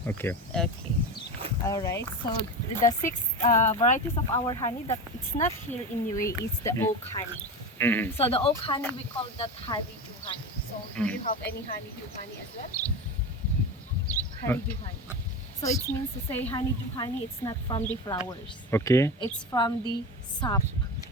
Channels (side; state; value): both; normal; correlation 0.23